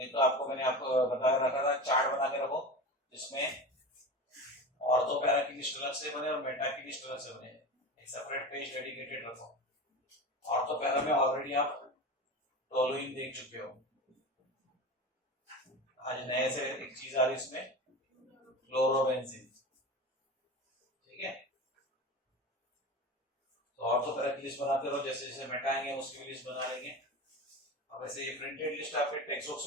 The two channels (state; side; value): normal; both; correlation 0.28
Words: तो आपको मैंने आपको बताया रखा था, चार्ट बना के रखो जिसमें ऑर्थो पैरा की लिस्ट अलग से बने और मेटा की लिस्ट अलग से बने, एक सेपरेट पेज डेडिकेटेड रखो। ऑर्थो पैरा में ऑलरेडी आप टोलुइन देख चुके हो, आज नए से एक चीज आ रही इसमें, क्लोरोबेंजीन, ठीक है। तो ऑर्थो पैरा की लिस्ट बनाते रहो, जैसे जैसे मेटाएंगे उसकी भी लिस्ट बना लेंगे। अब ऐसे ये प्रिंटेड लिस्ट आपके टेक्स्ट बुक्स